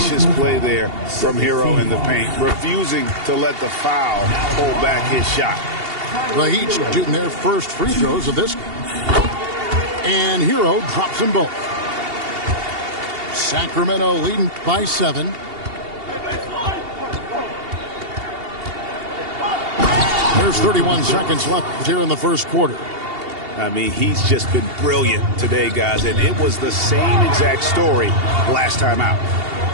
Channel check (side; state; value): left; late; 2.8 ms